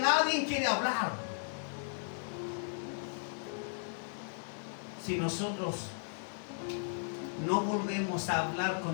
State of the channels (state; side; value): silent; right; digital silence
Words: quiere hablar. Si nosotros no volvemos a hablar